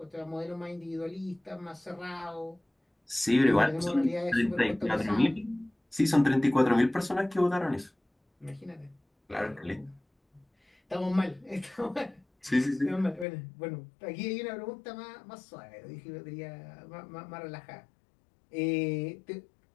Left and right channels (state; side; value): drops out; right; at 13.2 s